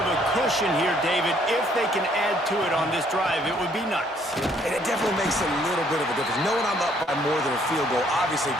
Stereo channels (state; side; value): normal; both; correlation 0.65